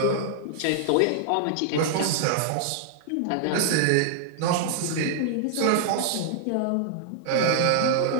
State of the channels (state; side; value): different; both; correlation -0.01